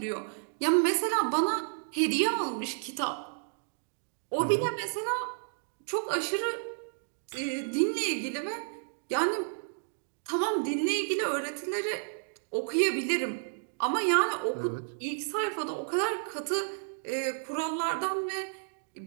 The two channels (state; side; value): silent; left; digital silence